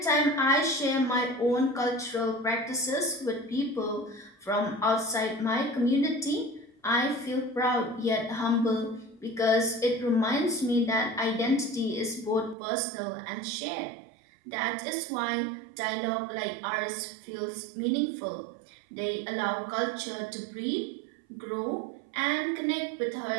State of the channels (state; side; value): drops out; left; at 12.6 s